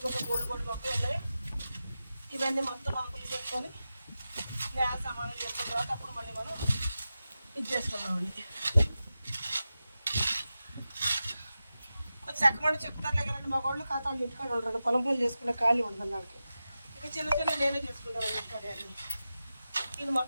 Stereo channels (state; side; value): inverted; both; correlation -0.93